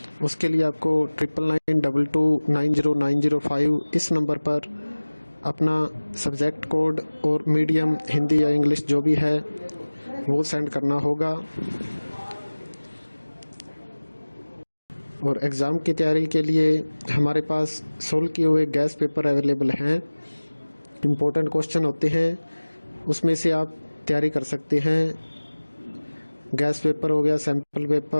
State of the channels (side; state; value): both; inverted; correlation -1.00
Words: उसके लिए आपको 9992290905 इस नंबर पर अपना सब्जेक्ट कोड और मीडियम हिंदी या इंग्लिश जो भी है वो सेंड करना होगा। और एग्ज़ाम की तैयारी के लिए हमारे पास सोल्व किए हुए गैस पेपर अवेलेबल हैं। इम्पोर्टेंट क्वेश्चन होते हैं, उसमें से आप तैयारी कर सकते हैं। गैस पेपर हो गया, सैम्पल